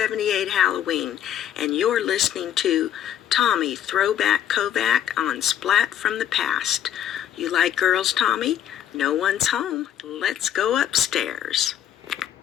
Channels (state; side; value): quieter; right; 10.5 dB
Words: Halloween, and you're listening to Tommy Throwback Kovac on Splat from the Past. You like girls, Tommy? No one's home. Let's go upstairs.